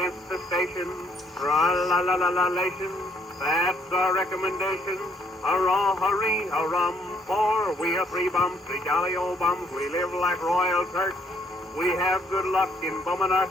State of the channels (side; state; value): both; normal; correlation 0.67